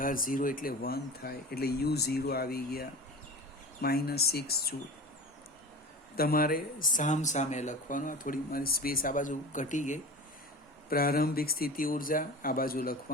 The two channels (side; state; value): both; normal; correlation 0.34